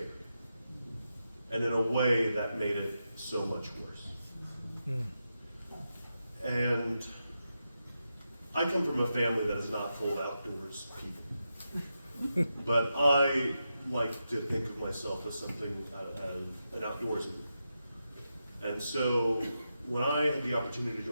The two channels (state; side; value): inverted; both; correlation -0.88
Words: And in a way that made it so much worse. And I come from a family that is not full of outdoors people. But I like to think of myself as something, as an outdoorsman. And so when I had the opportunity to